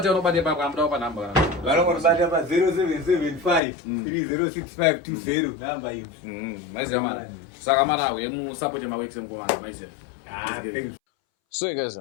pakamda pa number kana. Vanobata pa 0775 306520 number iyi. Maize mana. Saka mana uye musupport maworks mkomana maize. So guys,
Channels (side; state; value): right; drops out; at 3.6 s